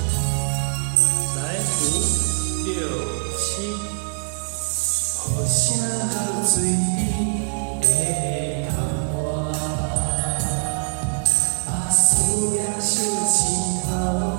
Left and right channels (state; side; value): silent; left; digital silence